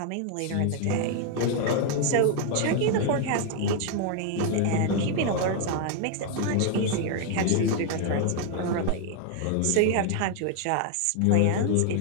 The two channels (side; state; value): both; different; correlation 0.00